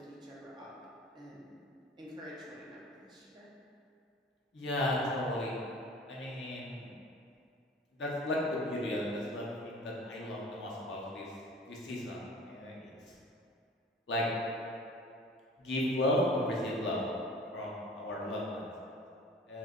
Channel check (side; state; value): both; normal; correlation 0.44